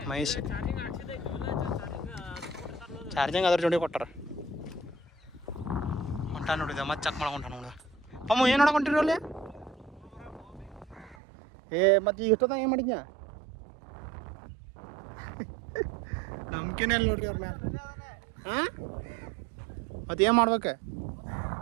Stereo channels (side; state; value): left; drops out; at 11.2 s